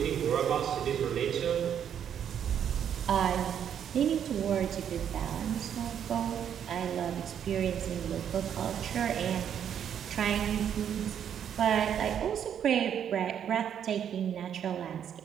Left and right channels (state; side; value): quieter; left; 8.9 dB